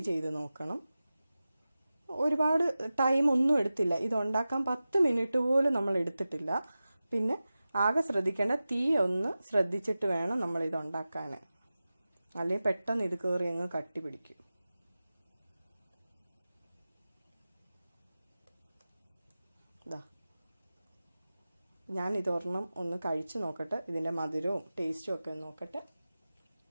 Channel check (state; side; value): inverted; both; correlation -0.95